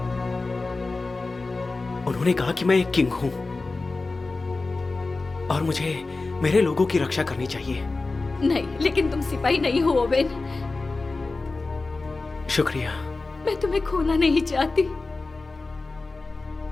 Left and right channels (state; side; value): quieter; right; 3.6 dB